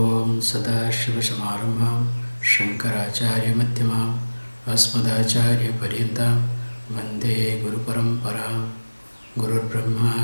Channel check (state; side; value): inverted; both; correlation -1.00